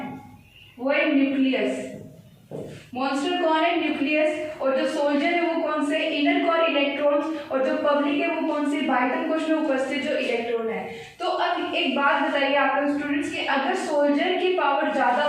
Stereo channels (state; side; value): identical; both; correlation 1.00